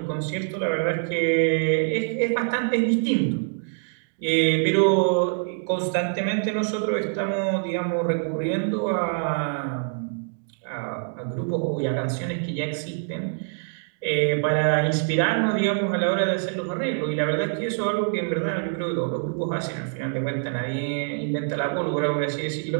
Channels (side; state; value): left; silent; digital silence